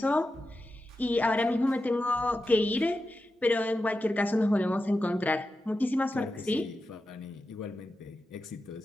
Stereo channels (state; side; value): normal; both; correlation 0.91